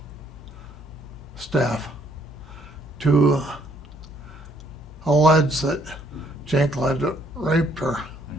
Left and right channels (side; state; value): both; normal; correlation 0.67